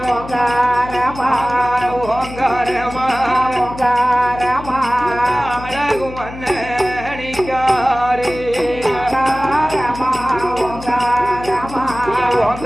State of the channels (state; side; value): noise; left; hum, 13 dB below the sound